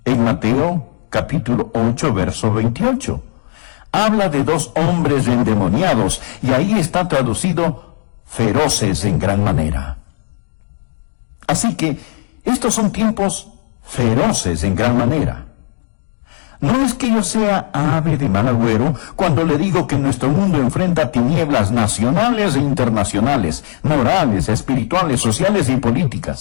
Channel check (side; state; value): right; silent; digital silence